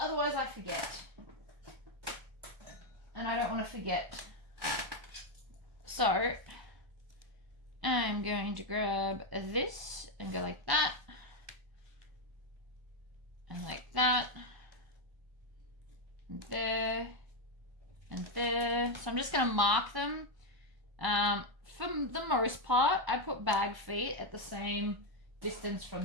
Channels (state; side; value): late; left; 1.0 ms